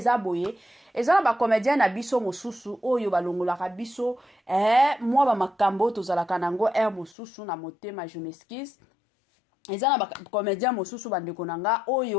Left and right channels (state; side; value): drops out; right; at 7.2 s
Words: boye ezala ba comédienne na biso mosusu oyo balongolaka biso moi ba makambo tozalaka nango mosusu na motema je m'excuse ezana ba comédien mosusu bandeko nanga